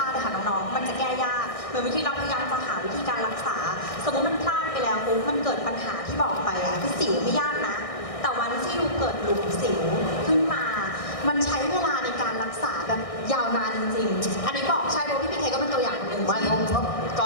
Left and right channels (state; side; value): late; right; 1.6 ms